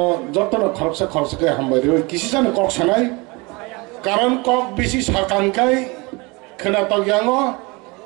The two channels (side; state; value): left; quieter; 26.5 dB